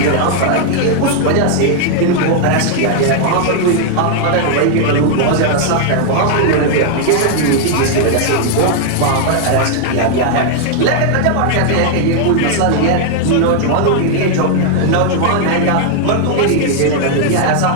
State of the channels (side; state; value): both; different; correlation 0.00